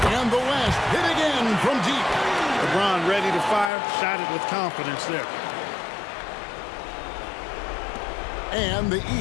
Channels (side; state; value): right; drops out; at 3.7 s